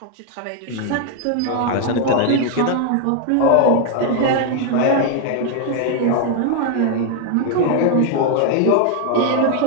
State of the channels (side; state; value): both; different; correlation 0.00